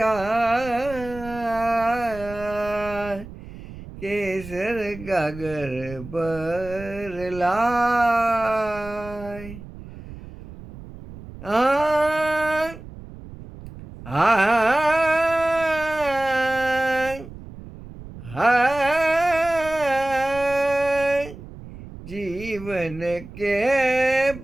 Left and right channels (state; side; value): noise; right; rumble, 15 dB below the sound